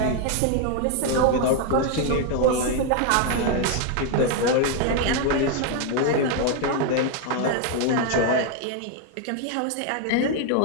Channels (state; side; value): different; both; correlation 0.01